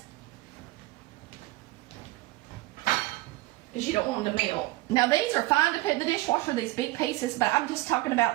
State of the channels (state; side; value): quieter; left; 19.6 dB